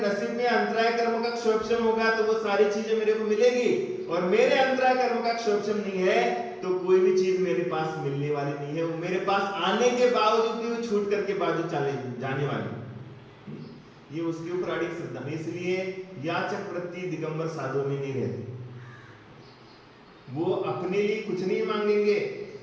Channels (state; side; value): identical; both; correlation 1.00